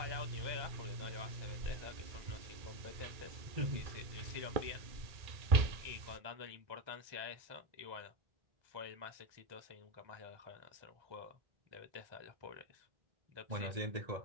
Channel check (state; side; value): late; left; 2.3 ms